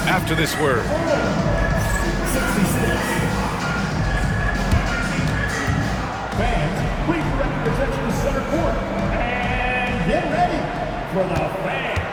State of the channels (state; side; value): identical; both; correlation 1.00